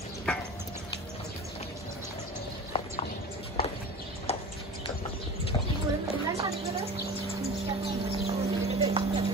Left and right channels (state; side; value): normal; both; correlation 0.35